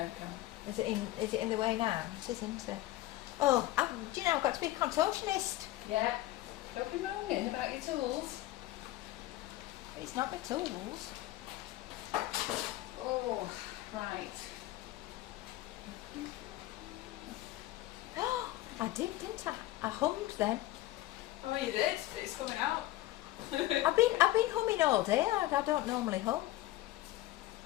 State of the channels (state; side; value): quieter; right; 16.3 dB